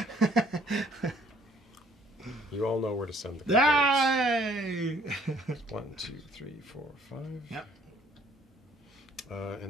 You all know where to send the Yay! 1, 2, 3, 4, 5. Yep.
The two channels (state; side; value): normal; both; correlation 0.61